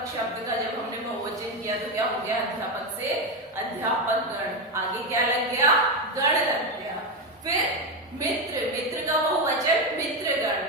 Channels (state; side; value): normal; both; correlation 0.11